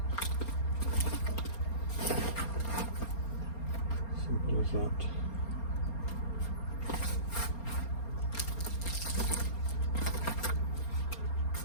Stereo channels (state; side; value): late; right; 4.3 ms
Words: Simple as that.